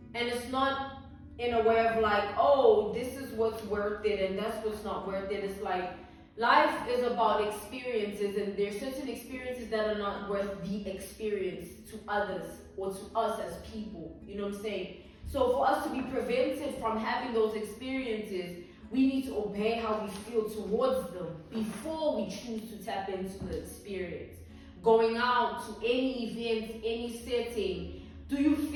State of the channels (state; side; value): identical; both; correlation 1.00